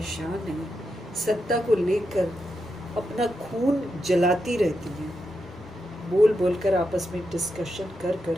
हैं, सत्ता को लेकर अपना खून जलाती रहती हैं, बोल बोलकर आपस में डिस्कशन कर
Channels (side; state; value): both; normal; correlation 0.85